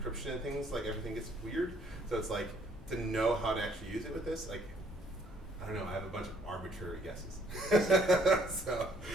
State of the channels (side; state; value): both; normal; correlation 0.64